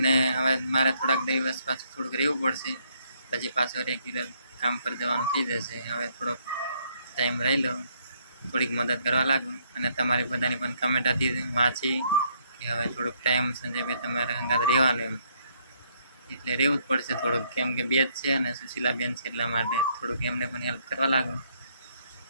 હવે મારે થોડાક દિવસ પાછું થોડુંક રહેવું પડશે, પછી પાછો રેગ્યુલર કામ પર જવાનું થઈ જશે. હવે થોડોક ટાઈમ રહી લો, થોડીક મદદ કરવા લાગુ. અને તમારી બધાની પણ કમેન્ટ હતી વાંચી કે હવે થોડુંક ટાઈમ સંજયભાઈ તમારે હંગાત રહેવાનું એમ, એટલે રહેવું જ પડશે થોડુંક, કેમ કે બે જ છે અને સુશીલાબેન છે એટલા માટે થોડુંક એમને પણ હેલ્પ કરવા લાગુ.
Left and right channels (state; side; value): inverted; both; correlation -0.70